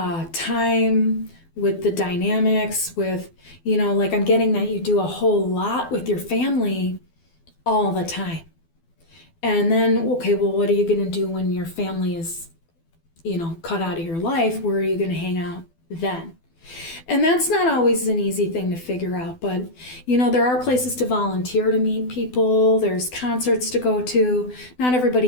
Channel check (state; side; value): late; right; 12 ms